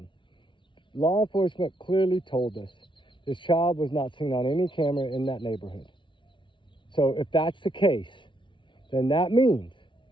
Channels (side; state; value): right; late; 0.24 ms